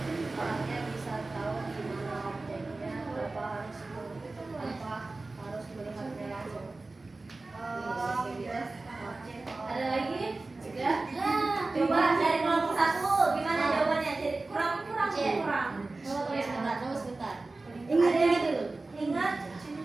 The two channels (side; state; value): left; quieter; 3.3 dB